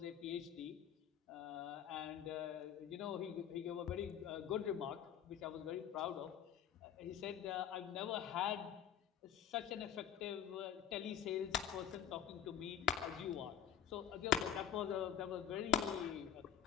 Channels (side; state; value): right; quieter; 9.1 dB